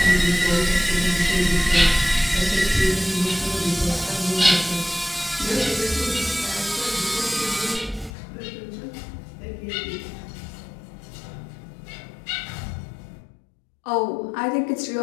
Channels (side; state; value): right; drops out; at 8.1 s